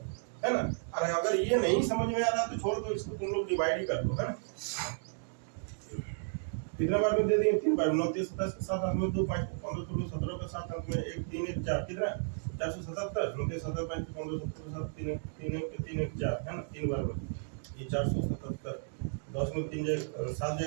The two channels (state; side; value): silent; left; digital silence